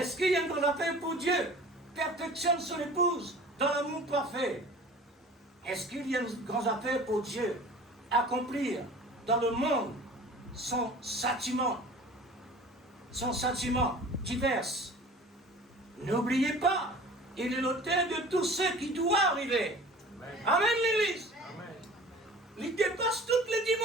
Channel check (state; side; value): normal; both; correlation 0.43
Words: qu'il y a une grande affaire pour Dieu perfectionne son épouse dans l'amour parfait? Est-ce qu'il y a une grande affaire pour Dieu accomplir dans le monde son châtiment divers? N'oubliez pas, il est l'auteur de tout ce qui doit arriver. Amen, Amen l'Église. Amen. Il dépasse toutes les